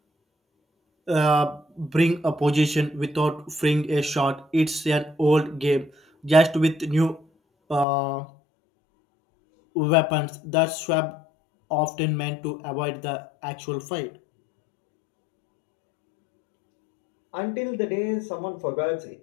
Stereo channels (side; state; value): right; drops out; at 7.9 s